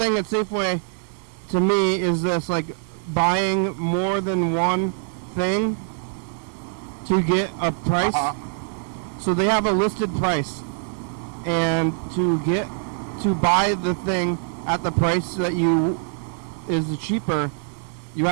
at Safeway, to me, is this like buying more than one thing to get a price. So they have a listed price, and to buy the thing at the price that is cheaper, you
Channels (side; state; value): left; silent; digital silence